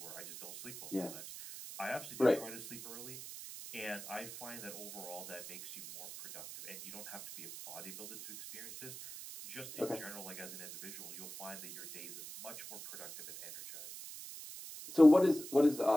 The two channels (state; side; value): noise; right; hiss, 11 dB below the sound